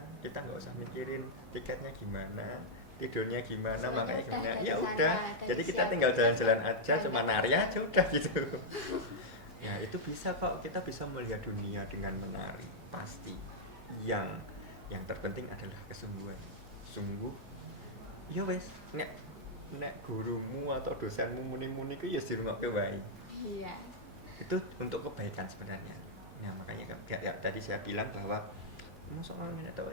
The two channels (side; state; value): both; normal; correlation -0.05